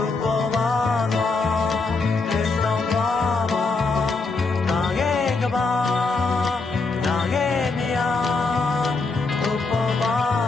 ုပေါ်ပါတော့လက်ဆောင်ပါပါနာရဲ့ကဘာနာရဲ့နေရာဘုပေါ်ပါ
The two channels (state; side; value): quieter; right; 3.9 dB